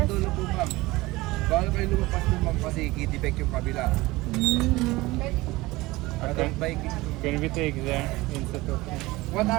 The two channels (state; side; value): quieter; left; 20.4 dB